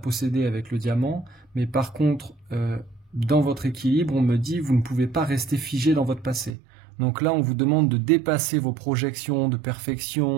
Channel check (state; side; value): drops out; left; at 6.6 s